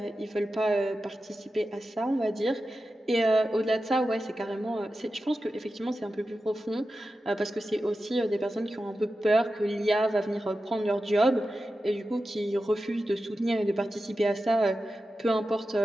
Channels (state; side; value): normal; both; correlation 0.92